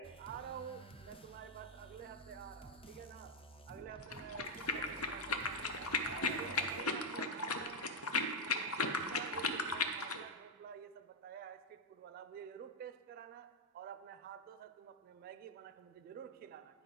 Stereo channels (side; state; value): both; normal; correlation -0.02